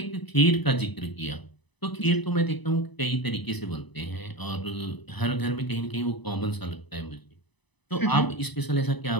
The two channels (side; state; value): right; late; 1.0 ms